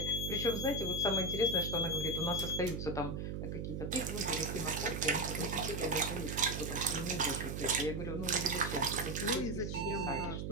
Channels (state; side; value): noise; right; hum, 3 dB below the sound